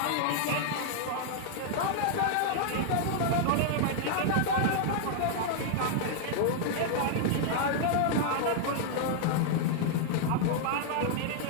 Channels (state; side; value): different; both; correlation 0.00